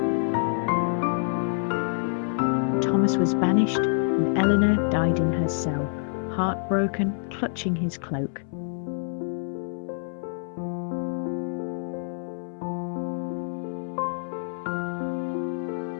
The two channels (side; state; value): right; silent; 60 dB below the other